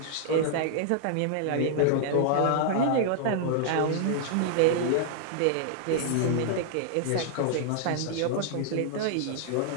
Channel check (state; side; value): different; both; correlation 0.00